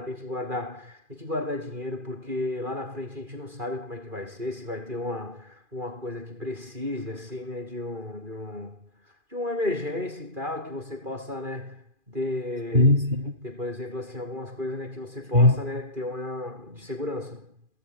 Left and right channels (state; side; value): late; left; 2.4 ms